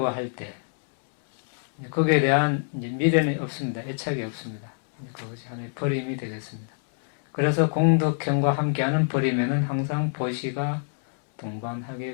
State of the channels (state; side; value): silent; right; digital silence